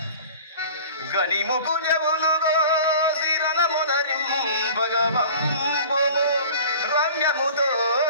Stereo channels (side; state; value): both; inverted; correlation -0.43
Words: గనిముకు జవులుగో శిరణమునరింపగవంబు రమ్యముతో